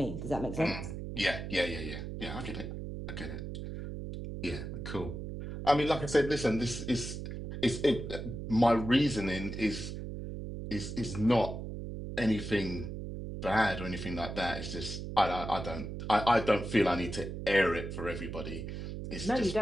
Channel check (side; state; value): right; noise; hum, 7 dB below the sound